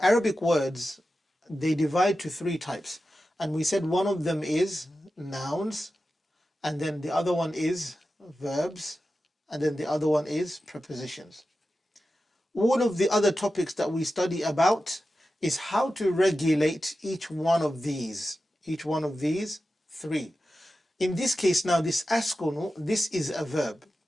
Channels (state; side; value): normal; both; correlation 0.92